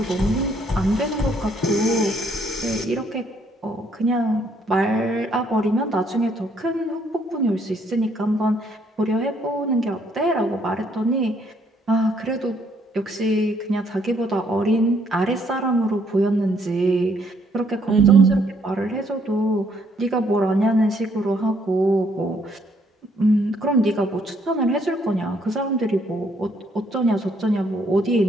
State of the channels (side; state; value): both; normal; correlation 0.68